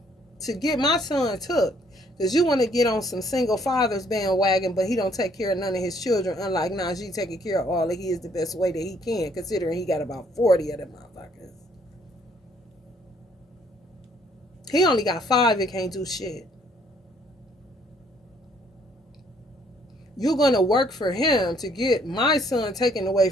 to get my son took because you want to get on some single fathers bandwagon, but he don't take care of none of his children, unlike Najee taking care of all of his the best way that he can, considering he got about 40 of them motherfuckers. He only got 5 and can't do shit. You're going to work for him to get my son taken away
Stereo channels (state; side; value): normal; both; correlation 0.65